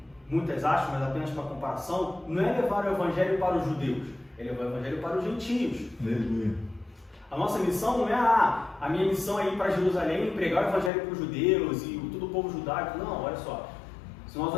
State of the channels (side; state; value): right; drops out; at 10.9 s